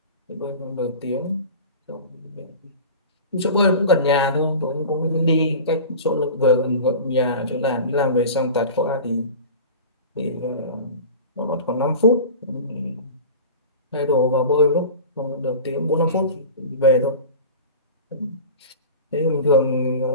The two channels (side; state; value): both; inverted; correlation -0.35